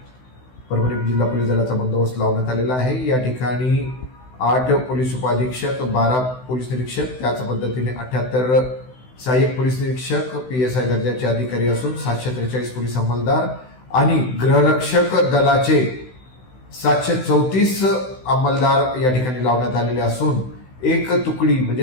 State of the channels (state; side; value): late; right; 16 ms